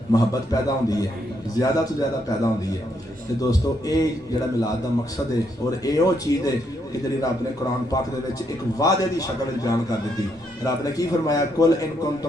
محبت پیدا ہوندی ہے، زیادہ تو زیادہ پیدا ہوندی ہے۔ تے دوستو اے جڑا میلاد دا مقصد ہے اور اے او چیز ہے کہ جڑی رب نے قرآن پاک دے وچ ایک وعدے دی شکل وچ بیان کر دتی۔ رب نے کی فرمایا؟ قل ان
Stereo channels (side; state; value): both; normal; correlation 0.76